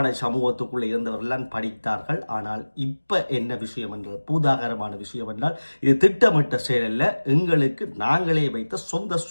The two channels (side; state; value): both; inverted; correlation -1.00